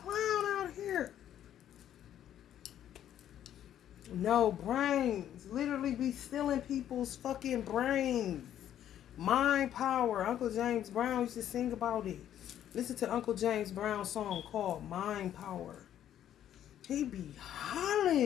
out here. No brains. Literally be stealing people's fucking brains. Mind power. Uncle James Brown used to sing about it. Listen to Uncle James Brown's song called Mind Power. He be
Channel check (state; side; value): quieter; right; 10.9 dB